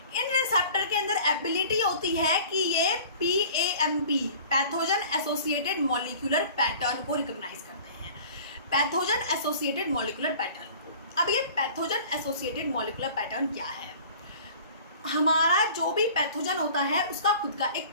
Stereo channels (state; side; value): inverted; both; correlation -0.45